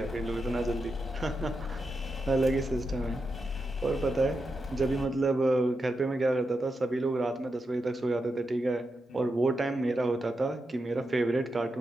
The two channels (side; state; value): both; normal; correlation 0.87